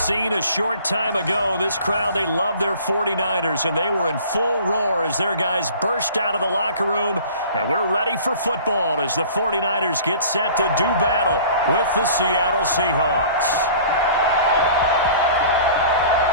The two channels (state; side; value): inverted; both; correlation -0.46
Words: a short time ago, this crowd, they love their 49ers, and they were in full roar as their guys burst out of the locker room, and we're ready for football as the 49ers get set to do battle with the Seattle Seahawks.